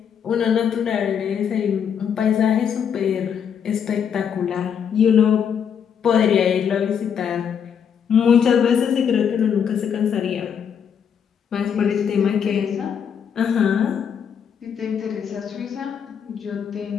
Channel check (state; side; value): quieter; right; 7.7 dB